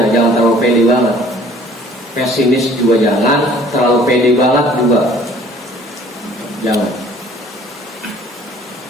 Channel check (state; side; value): normal; both; correlation 0.54